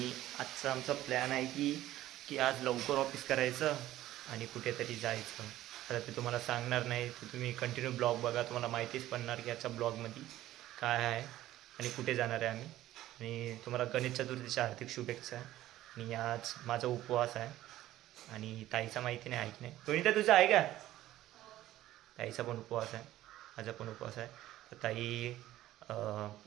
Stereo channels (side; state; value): left; quieter; 14.5 dB